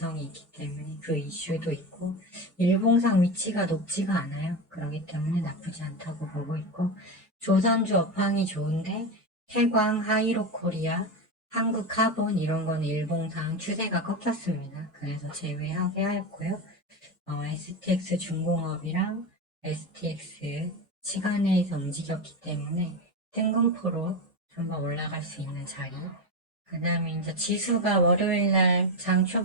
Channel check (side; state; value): both; normal; correlation 0.17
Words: 있기 때문에 그 이슈도 있고 일봉상 위치가 높지가 않아요. 그렇기 때문에 나쁘지 않다고 보고 있고 조선주 업황이 좋은데 태광, 하이로코리아, 한국카본 이런 거는 일봉상 추세가 꺾였습니다. 그래서 제외하게 하였고요. STX 중공업이랑 STX 시간에서 움직였기 때문에 뜬금포로 한번 올라갈 수 있는 자리. 그 다음에 이제 지수가 월요일날 장